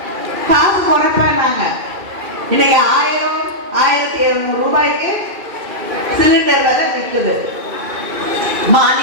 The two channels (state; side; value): late; left; 2.4 ms